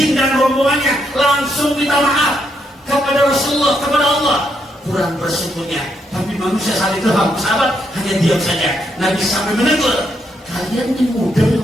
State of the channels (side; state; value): both; normal; correlation 0.77